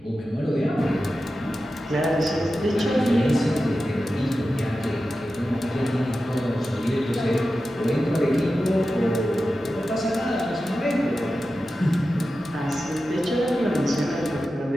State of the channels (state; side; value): noise; right; hum, 30 dB below the sound